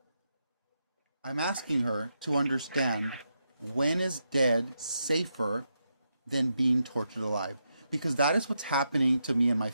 I'm asking her to understand, when is dead safer than being tortured alive? Because that is what's happening to me and my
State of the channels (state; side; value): inverted; both; correlation -0.84